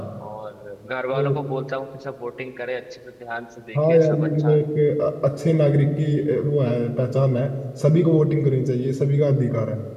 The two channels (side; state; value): both; identical; correlation 1.00